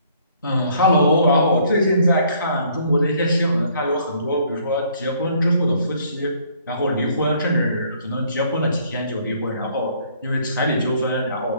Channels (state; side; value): inverted; both; correlation -0.63